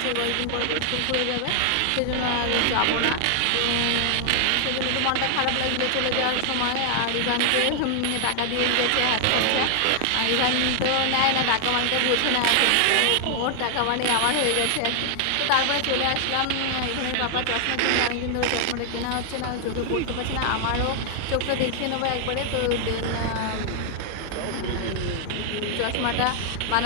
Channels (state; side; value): different; both; correlation 0.00